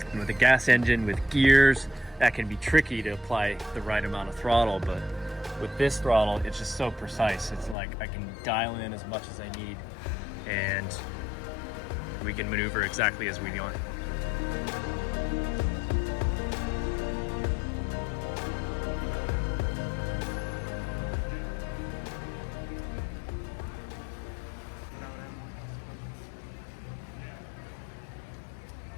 And with a gas engine with gears, that can be tricky to apply the right amount of throttle, but with this throttle it's just so precise. It's like I can dial in as much as I need and we can maneuver exactly as we want.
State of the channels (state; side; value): drops out; right; at 7.8 s